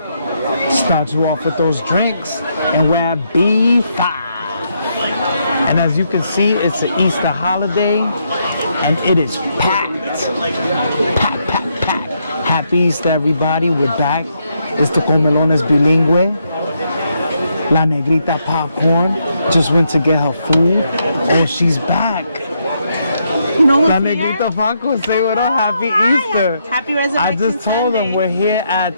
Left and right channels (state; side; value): inverted; both; correlation -0.78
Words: Start you off with those drinks, and we're at B5. And as you can see, it's an Easter holiday, and it is packed. Packed, packed, packed. Happy Easter, everybody. We're back. It's the Comelones Bilingüe. La Negrita Popcorn just went to get her food, and she's back. La Negrita Popcorn, say what up. Happy Easter. Happy Resurrection I just told them we're here